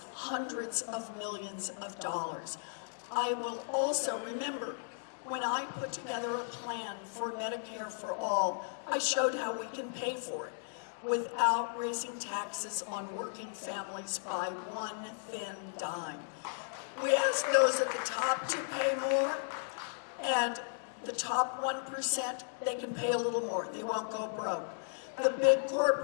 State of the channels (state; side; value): silent; right; digital silence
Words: hundreds of millions of dollars. I will also, remember, when I put together a plan for Medicare for all, I showed how we can pay for it without raising taxes on working families by one thin dime. We ask those at the top to pay more, and the top 1%, they can pay a little more. They won't go broke. The big